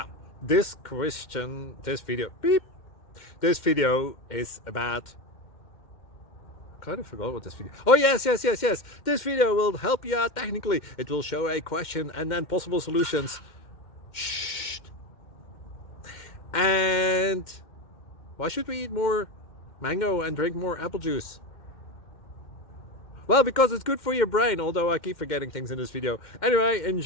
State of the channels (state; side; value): late; right; 2.1 ms